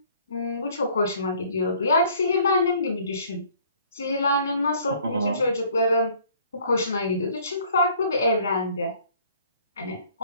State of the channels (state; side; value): inverted; both; correlation -0.57